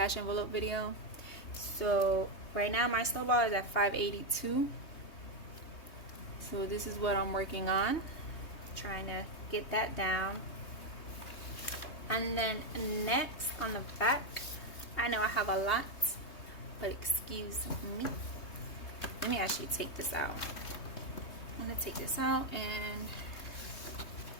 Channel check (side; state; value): right; late; 3.2 ms